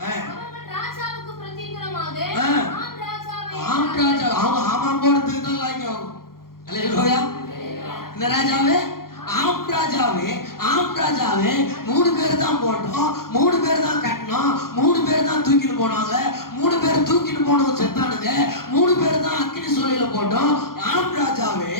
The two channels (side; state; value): right; late; 0.92 ms